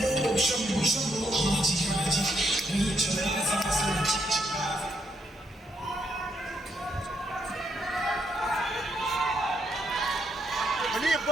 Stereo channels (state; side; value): normal; both; correlation 0.76